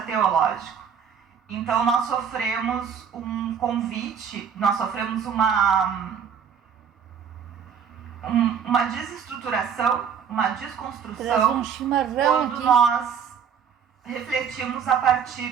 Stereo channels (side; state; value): left; quieter; 7.4 dB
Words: teológico. Então nós sofremos um convite, nós sofremos uma desestruturação, uma desconstrução, quando nós refletimos